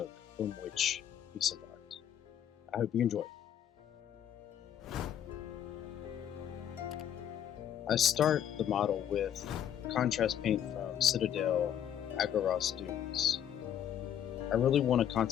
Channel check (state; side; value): quieter; right; 9.9 dB